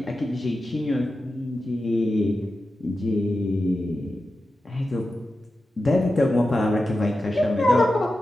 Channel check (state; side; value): normal; both; correlation 0.92